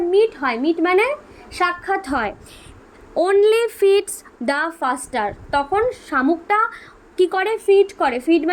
মিট হয়, মিট মানে সাক্ষাৎ হয়, অনলি ফিডস দ্য ফাস্টার, তখন শামুকটা কি করে? ফিড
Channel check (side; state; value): both; identical; correlation 1.00